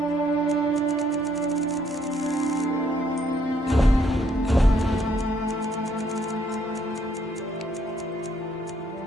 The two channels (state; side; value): normal; both; correlation 0.69